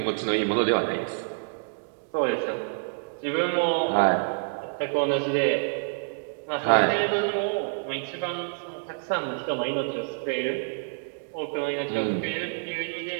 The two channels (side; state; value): left; silent; digital silence